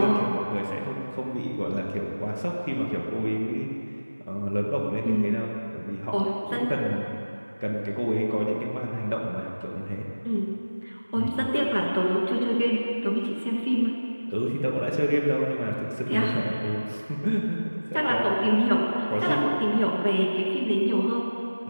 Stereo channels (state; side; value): inverted; both; correlation -1.00